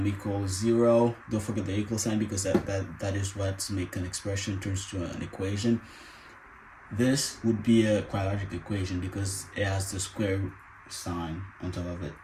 equals 0. Don't forget the equal sign, because that is what makes an expression turns to an equation. This would be a quadratic equation because it has the square sign on top of it.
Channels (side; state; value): both; identical; correlation 1.00